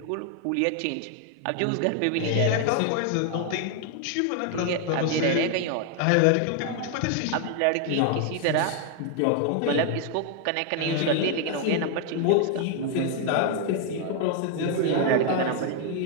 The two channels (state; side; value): different; both; correlation 0.00